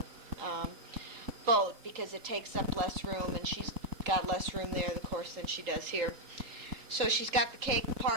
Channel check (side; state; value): left; late; 4.0 ms